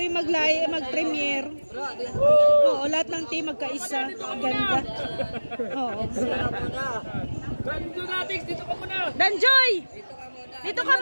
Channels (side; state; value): both; inverted; correlation -1.00